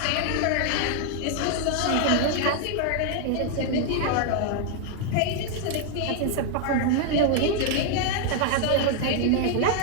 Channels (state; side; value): different; both; correlation 0.00